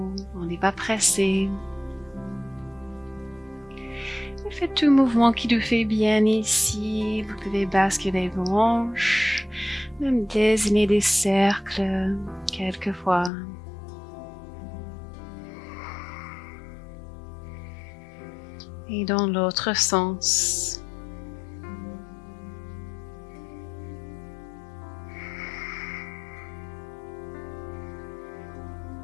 on n'est pas pressé. Faites tout mouvement qui vous fait bien ici. Vous pouvez basculer vos hanches, même dessiner des cercles quelquefois. Et dans l'autre sens.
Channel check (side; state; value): right; drops out; at 13.3 s